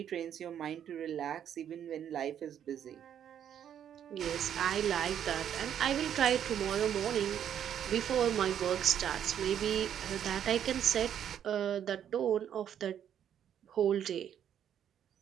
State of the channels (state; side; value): quieter; left; 9.5 dB